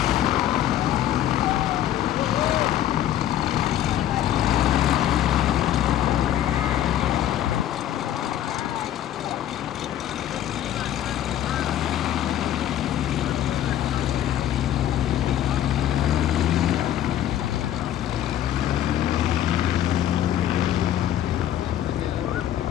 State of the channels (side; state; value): right; quieter; 11.7 dB